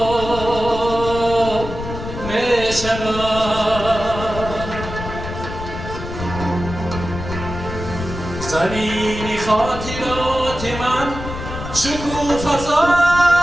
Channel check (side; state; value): left; noise; rumble, 8 dB below the sound